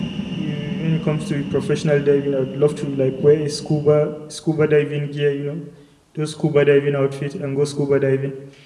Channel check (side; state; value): both; identical; correlation 1.00